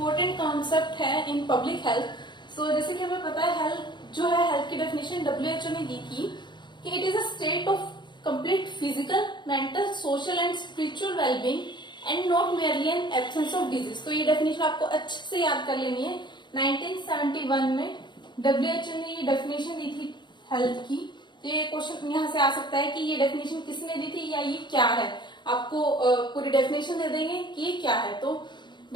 कॉन्सेप्ट है इन पब्लिक हेल्थ। सो जैसे कि हमें पता है हेल्थ जो है, हेल्थ की डेफिनेशन WHO ने दी थी कि it is a state of complete physical, mental, social and spiritual wellbeing and not merely N absence of disease. तो ये डेफिनेशन आपको अच्छे से याद कर लेनी है। 1971 में WHO ने ये डेफिनेशन दी थी हेल्थ की। तो ये क्वेश्चन यहाँ से आ सकता है कि ये डेफिनेशन किसने दी थी या ये क्या है। आपको पूरी डेफिनेशन दे देंगे कि ये क्या है। तो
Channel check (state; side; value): late; right; 0.22 ms